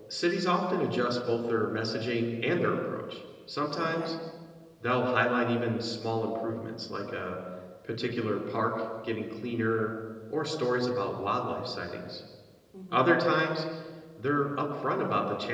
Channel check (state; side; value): identical; both; correlation 1.00